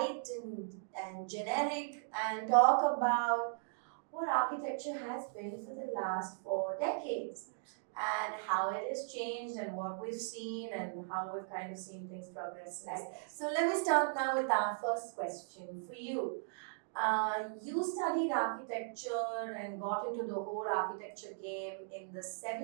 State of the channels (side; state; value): left; silent; digital silence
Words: and generic and talk about what architecture has been for the last 4 decades and how it has changed and what we've seen and how we've kind of seen things progress. So let me start now with our first question for you. You studied architecture and got into the whole architecture game in the